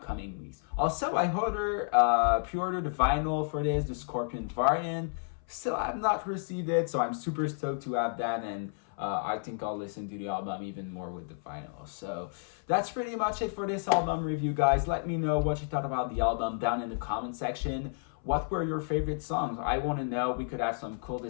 weeks. Also, I pre-ordered the vinyl for this, the Scorpion variant. Still have not received it, so I'm super stoked to have that, and I think I'll listen to the album even more with the vinyl. So that's pretty much it for this album review, guys. Let me know what you thought about the album down in the comment section. What were your favorite songs? I want to know. We could have some cool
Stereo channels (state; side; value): silent; right; 57 dB below the other